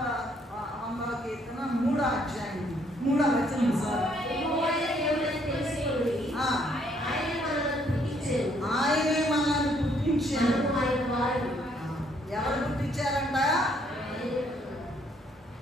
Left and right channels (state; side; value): normal; both; correlation 0.67